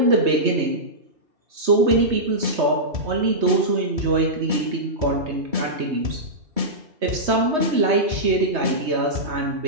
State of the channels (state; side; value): late; left; 3.2 ms